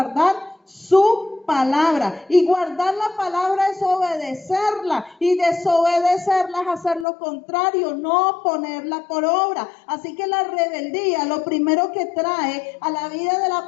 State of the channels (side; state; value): right; drops out; at 7.1 s